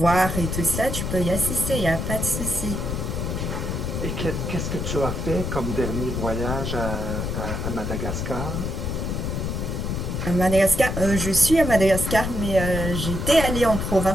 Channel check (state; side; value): noise; left; rumble, 2 dB below the sound